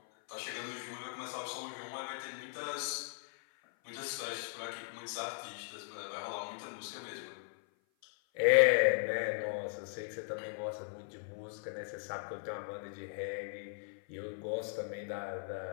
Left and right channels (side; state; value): right; silent; 52 dB below the other